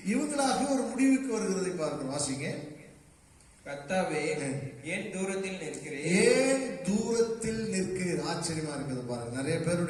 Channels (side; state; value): both; identical; correlation 1.00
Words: இவங்களாக ஒரு முடிவுக்கு வருகிறதை பார்க்கிறோம். வாசிங்க. கர்த்தாவே ஏன் தூரத்தில் நிற்கிறேன், ஏன் தூரத்தில் நிற்கிறீர். ஆச்சரியமா இருக்குது பாருங்க. நிறைய